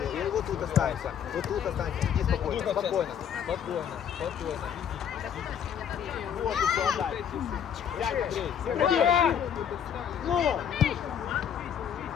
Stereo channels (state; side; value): quieter; right; 8.5 dB